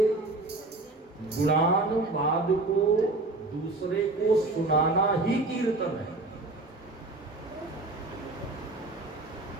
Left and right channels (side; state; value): left; quieter; 3.1 dB